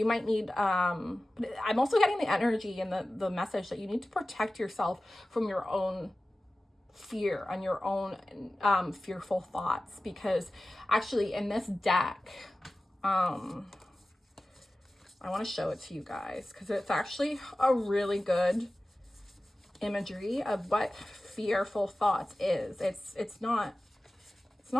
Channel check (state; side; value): normal; both; correlation 0.96